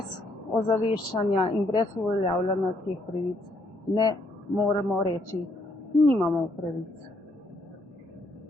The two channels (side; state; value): both; normal; correlation 0.71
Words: ozaveščanja in brez uveljavljanja teh pravic ne moremo reči, nimamo pravic,